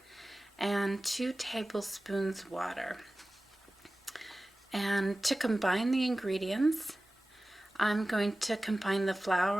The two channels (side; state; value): both; normal; correlation 0.97